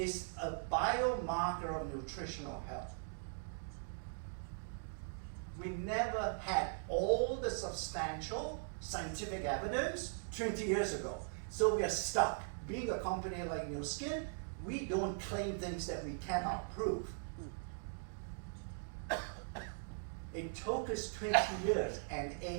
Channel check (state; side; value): silent; left; digital silence